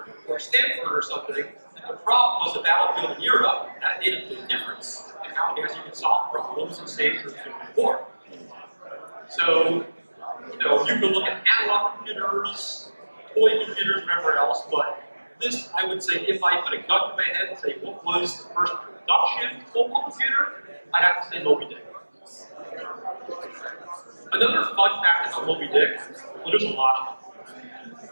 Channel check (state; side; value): inverted; both; correlation -1.00